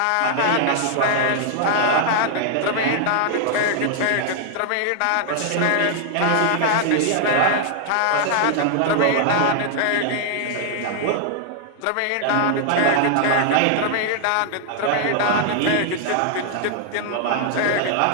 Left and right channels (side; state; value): both; different; correlation 0.00